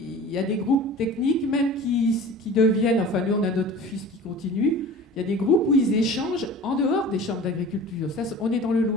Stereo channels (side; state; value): both; normal; correlation 0.40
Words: y a des groupes techniques même qui deviennent, enfin nous on a notre fils qui continue, il y a des groupes où ils échangent en dehors des chambres d'agriculture. Ça, on est dans le